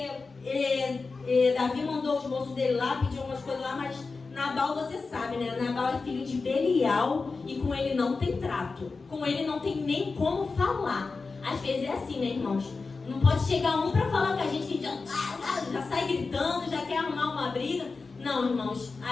Davi mandou os moços dele lá, pediu umas coisas lá, mas Nabal, você sabe, né? Nabal é filho de Belial e com ele não tem trato. Com ele não tem nem como falar. Às vezes é assim, né, irmãos? Não pode chegar um pra falar com a gente que já sai gritando, já quer arrumar uma briga. Não, irmãos.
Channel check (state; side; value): quieter; right; 4.2 dB